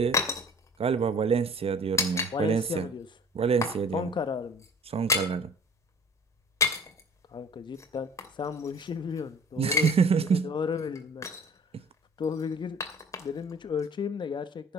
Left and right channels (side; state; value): both; normal; correlation 0.47